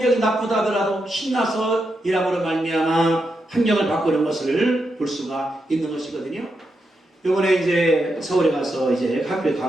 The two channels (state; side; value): normal; both; correlation 0.85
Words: 나쁘다 하더라도 신나서 일함으로 말미암아 환경을 바꾸는 것을 볼 수가 있는 것이거든요. 이번에 이제 서울에 가서 이제 학교에